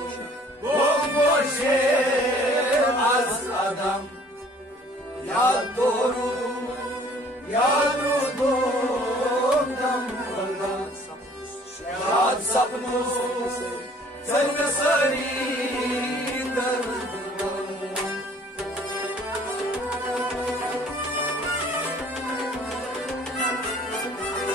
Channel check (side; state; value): both; normal; correlation 0.55